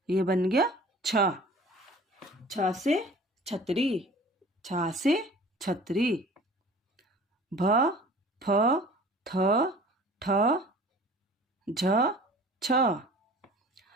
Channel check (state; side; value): normal; both; correlation 0.46